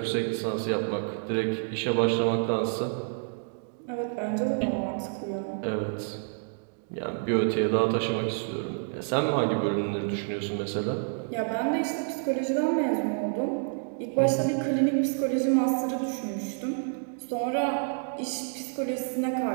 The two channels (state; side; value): silent; left; 59 dB below the other